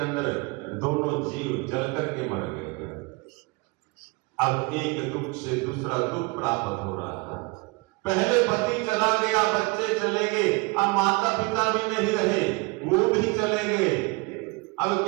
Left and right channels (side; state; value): left; quieter; 27.2 dB